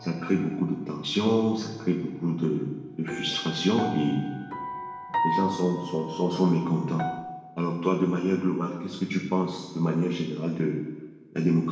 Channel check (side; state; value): both; identical; correlation 1.00